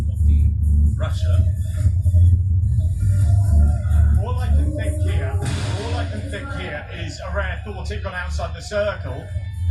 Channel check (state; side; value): identical; both; correlation 1.00